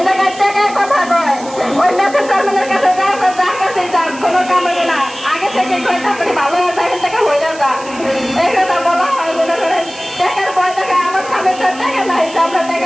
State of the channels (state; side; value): noise; right; hiss, 17 dB below the sound